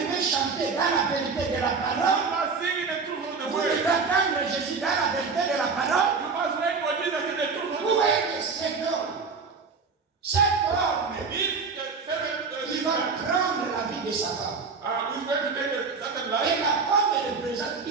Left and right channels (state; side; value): quieter; left; 4.9 dB